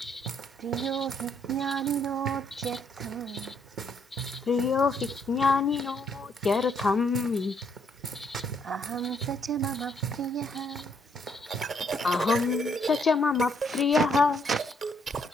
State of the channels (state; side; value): normal; both; correlation 0.71